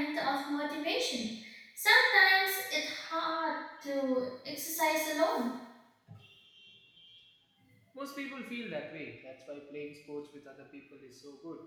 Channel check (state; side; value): identical; both; correlation 1.00